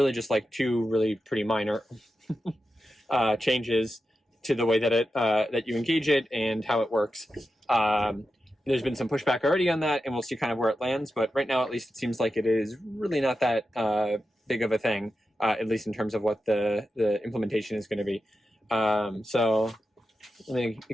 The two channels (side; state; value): both; normal; correlation 0.90